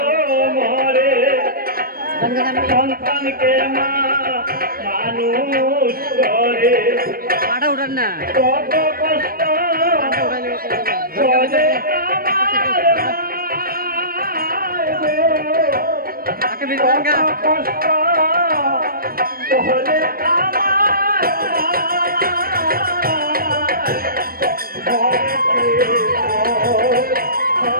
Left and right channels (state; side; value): late; left; 0.43 ms